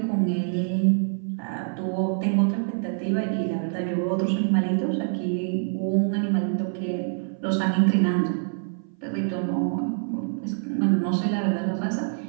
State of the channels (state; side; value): silent; left; 58 dB below the other